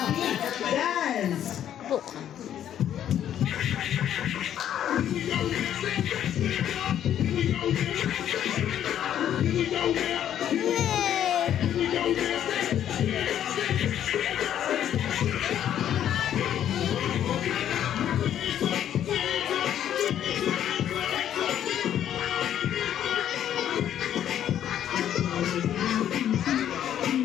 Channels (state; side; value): quieter; right; 10.4 dB